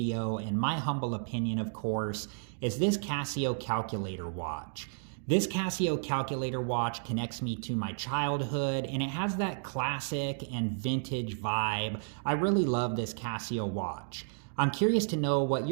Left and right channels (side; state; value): left; silent; digital silence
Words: in my humble opinion of course, is this Casio calculator watch. This Casio calculator watch connects me to my childhood, and it has that classic and vintage vibe. I really love this Casio watch. I'm curious to know what